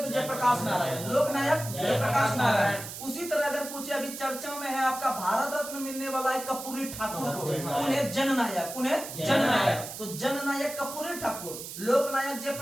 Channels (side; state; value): right; noise; hiss, 10 dB below the sound